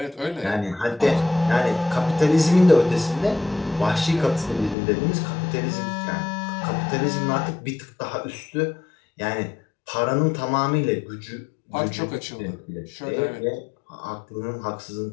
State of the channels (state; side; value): drops out; right; at 4.8 s